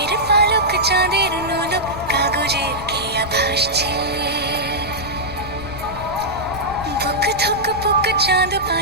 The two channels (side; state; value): left; noise; rumble, 14 dB below the sound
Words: পালক চাঁদের নোলক কাগজের খেয়া ভাসছে। বুক থুক পুক চাঁদ